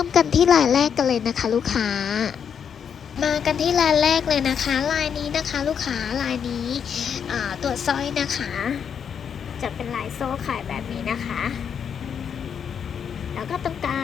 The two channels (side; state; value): right; quieter; 7.5 dB